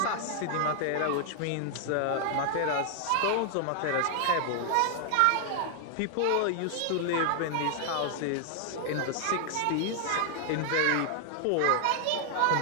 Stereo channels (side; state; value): both; different; correlation 0.00